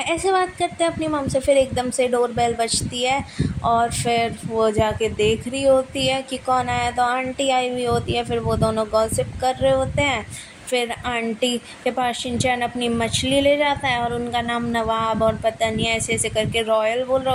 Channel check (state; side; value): identical; both; correlation 1.00